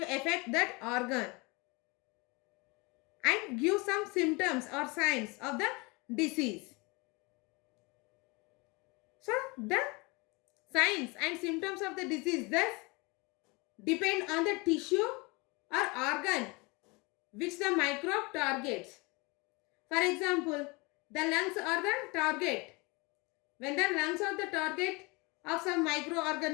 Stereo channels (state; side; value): quieter; right; 27.1 dB